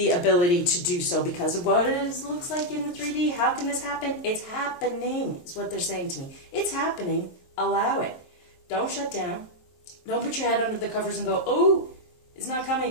ability to do so because of what it looks like in the 3D. How can this happen? It's happening, is what they're saying to me. It's happening. Allow it. Don't shut down. Don't put your head under the covers and go, oh, it's not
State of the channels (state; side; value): late; right; 22 ms